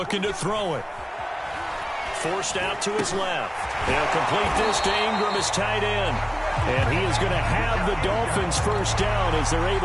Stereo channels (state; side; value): identical; both; correlation 1.00